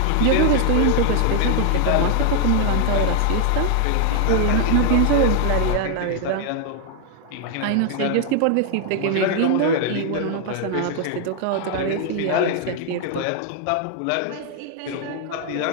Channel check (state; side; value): different; both; correlation 0.00